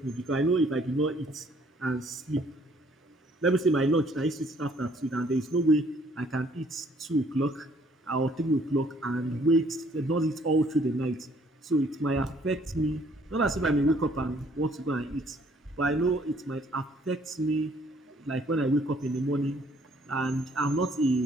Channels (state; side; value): normal; both; correlation 0.62